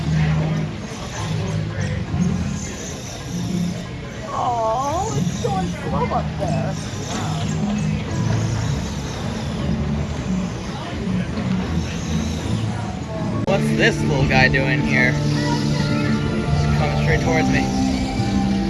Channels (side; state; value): both; identical; correlation 1.00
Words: Oh, it's going slow up there. What's this little guy doing here? He's coming straight towards me.